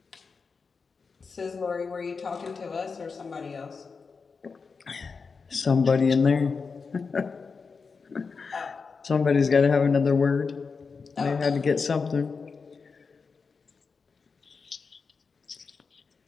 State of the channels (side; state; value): right; quieter; 5.0 dB